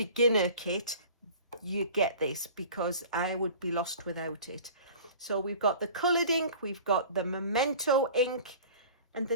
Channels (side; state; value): both; inverted; correlation -0.43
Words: kit, you get this, because I would be lost without it. So we've got the coloured ink, we've got the Memento ink, and